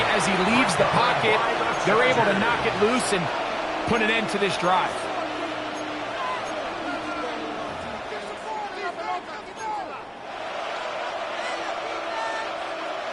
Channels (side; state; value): both; identical; correlation 1.00